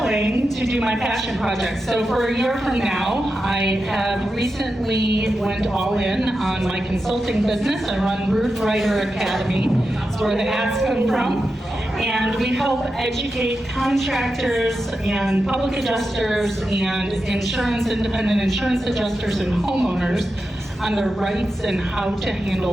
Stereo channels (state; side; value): normal; both; correlation 0.89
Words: to do my passion project. So for a year from now, I have recently went all in on my consulting business. I run Roof Writer Academy. That's where the ads come from. And we help educate contractors and public adjusters and independent insurance adjusters and homeowners on their rights and how to